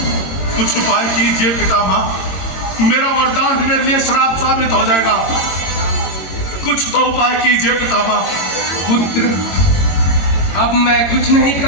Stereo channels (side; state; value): right; late; 22 ms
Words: कुछ उपाय कीजिए पितामह, मेरा वरदान मेरे लिए श्राप साबित हो जाएगा। कुछ तो उपाय कीजिए पितामह। पुत्र, अब मैं कुछ नहीं